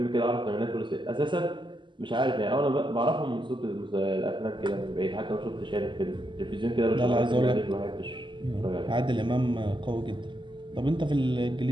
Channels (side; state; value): left; late; 0.23 ms